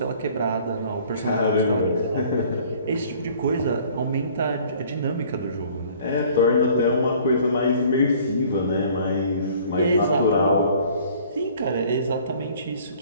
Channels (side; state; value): both; inverted; correlation -0.54